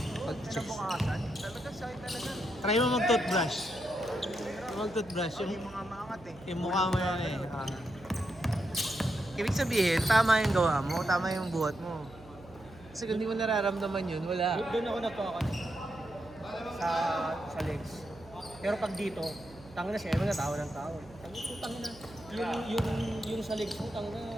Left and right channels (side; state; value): right; noise; hum, 21 dB below the sound